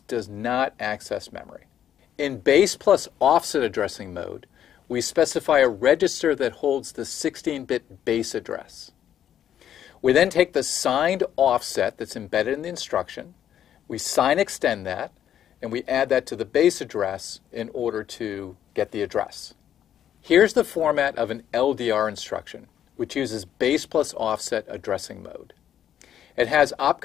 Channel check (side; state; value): right; quieter; 10.2 dB